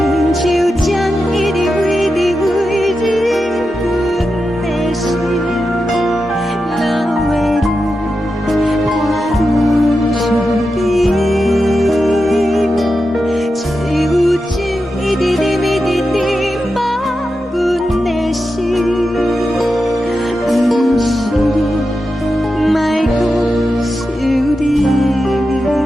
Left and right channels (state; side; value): normal; both; correlation 0.89